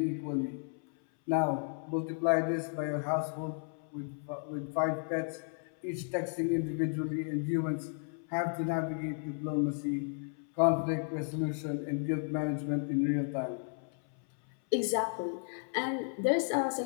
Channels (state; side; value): silent; right; 55 dB below the other